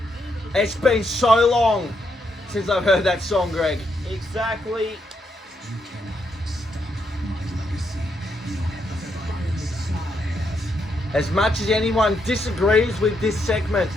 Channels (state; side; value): normal; both; correlation 0.78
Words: It's been so long since I've heard that song, Greg. Exactly. You cannot stop my legacy. As much as anyone disagrees with this segment,